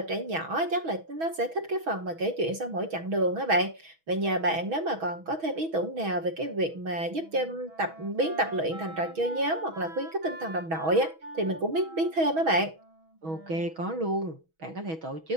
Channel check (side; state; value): left; late; 6.2 ms